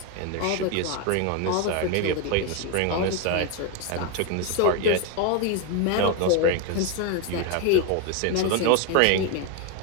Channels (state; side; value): different; both; correlation 0.01